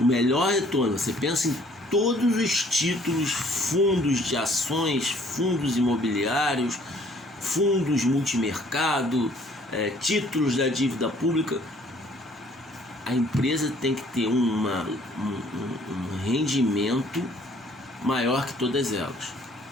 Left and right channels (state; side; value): normal; both; correlation 0.59